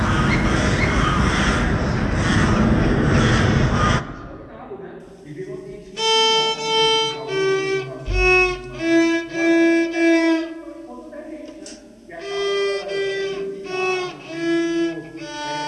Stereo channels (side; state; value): both; identical; correlation 1.00